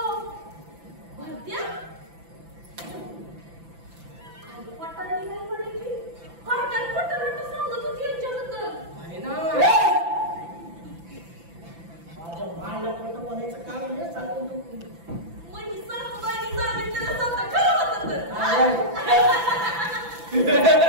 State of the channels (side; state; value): left; late; 5.9 ms